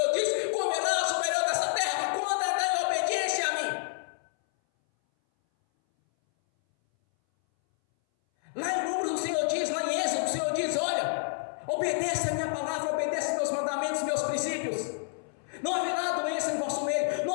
disse: comerás o melhor dessa terra quando andar em obediência a mim. Lá em Números o Senhor diz, lá em Êxodo o Senhor diz: olha, obedeça a minha palavra, obedeça meus mandamentos, meus princípios. Não haverá doença em vosso meio,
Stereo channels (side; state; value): right; silent; 58 dB below the other